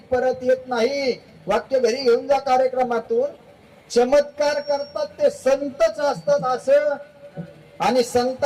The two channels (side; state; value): both; identical; correlation 1.00